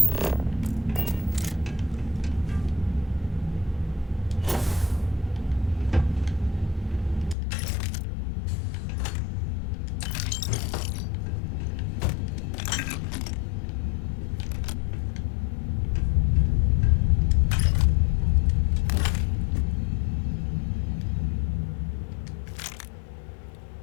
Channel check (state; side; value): drops out; right; at 7.4 s